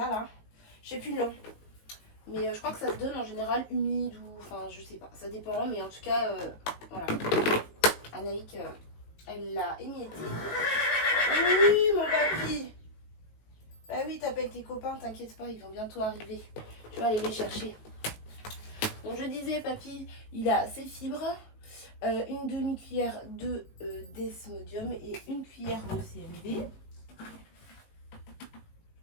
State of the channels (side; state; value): right; late; 18 ms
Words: là. Je sais plus le nom. Mais je crois que ça se donne en général humide ou... Enfin, je sais pas. Ça dépend. Mais en tout cas, voilà. Anaïk, elle l'a émietté. Oui, mon papy. Bah oui, t'appelles tes copains, t'inquiète pas. Ils vont bientôt arriver. Je vais aller les chercher. Donc, je disais, papy, il a ses fibres. Une demi-cuillère de Desmodium et une cuillère de CMV.